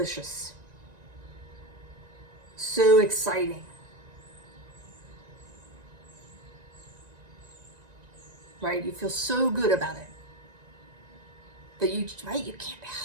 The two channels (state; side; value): late; left; 1.9 ms